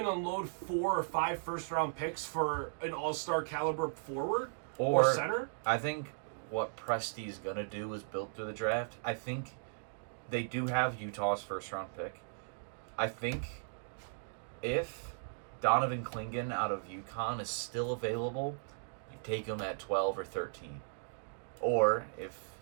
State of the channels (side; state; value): left; silent; digital silence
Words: unload 4 or 5 first-round picks for an all-star caliber forward or center? I think what Presti's going to do is build through the draft. I think they do have Utah's first-round pick. I think if Donovan Clingan out of UConn is still available, you take him at 12 or 13. Or if